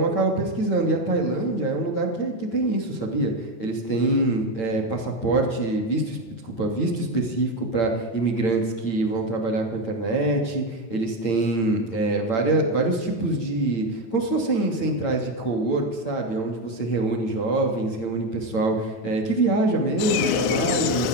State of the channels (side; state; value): right; late; 8.8 ms